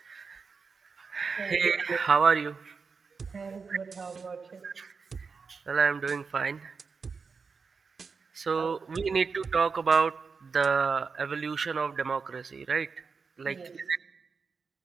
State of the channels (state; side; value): quieter; left; 5.1 dB